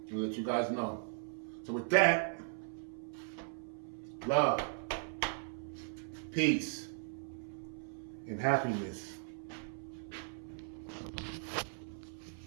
and let you guys know. So with that, love, peace, and happiness.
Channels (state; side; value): silent; left; 52 dB below the other